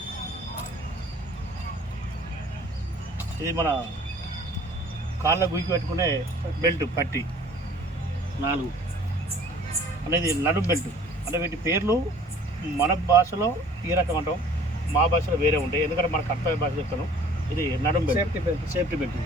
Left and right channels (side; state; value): both; normal; correlation 0.50